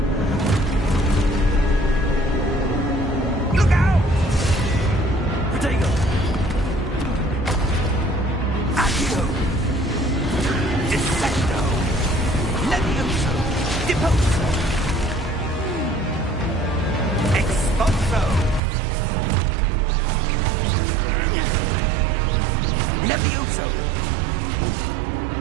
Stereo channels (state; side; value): drops out; left; at 18.6 s